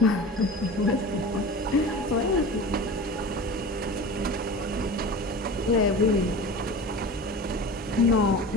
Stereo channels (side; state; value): both; normal; correlation 0.34